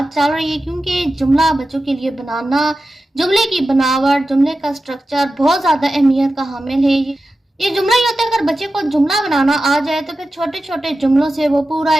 चल रही है क्योंकि जुमला बच्चों के लिए बनाना, जुमले की बनावट, जुमले का स्ट्रक्चर बहुत ज़्यादा अहमियत का हामिल है। ये जुमला ही होता है, अगर बच्चे को जुमला बनाना आ जाए तो फिर छोटे छोटे जुमलों से वो पूरा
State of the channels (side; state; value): both; normal; correlation 0.93